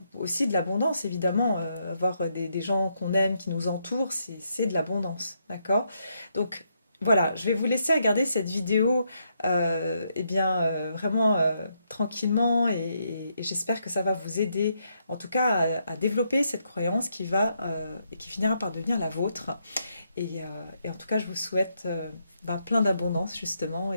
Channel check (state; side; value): inverted; both; correlation -0.78